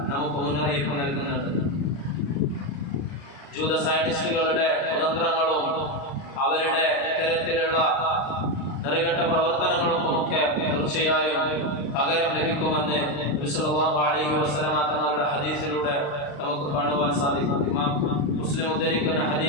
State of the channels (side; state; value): right; late; 36 ms